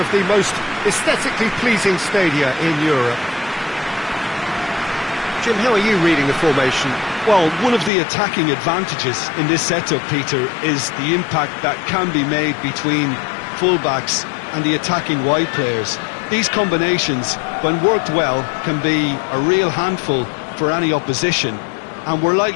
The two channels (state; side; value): drops out; right; at 7.9 s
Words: the most aesthetically pleasing stadia in Europe. Jim, how are you reading the formation? Well, one of the attacking advantages in this setup, Peter, is the impact that can be made between fullbacks and the attacking wide players. These combinations, when worked well, can be a real handful for any opposition. And we're